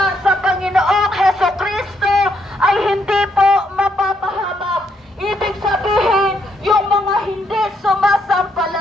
sa Panginoong Hesukristo ay hindi po mapapahamak. Ibig sabihin, yung mga hindi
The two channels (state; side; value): normal; both; correlation 0.75